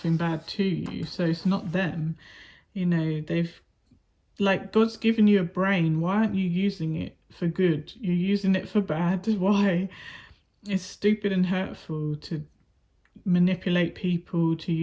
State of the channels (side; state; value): both; identical; correlation 1.00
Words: bad to you, so it's not them. You know, they've, like, God's given you a brain, why aren't you using it for good? You're using it for bad. Why? It's stupid and hurtful to manipulate people, to